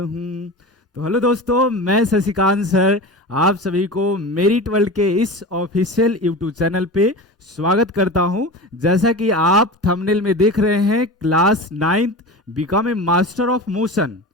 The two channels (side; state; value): both; normal; correlation 0.30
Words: तो हेलो दोस्तों, मैं शशिकांत सर आप सभी को मेरिट वर्ल्ड के इस ऑफिशियल यूट्यूब चैनल पे स्वागत करता हूं। जैसा कि आप थंबनेल में देख रहे हैं, class 9th become a master of motion.